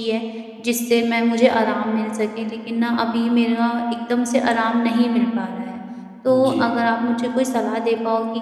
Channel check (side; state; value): both; identical; correlation 1.00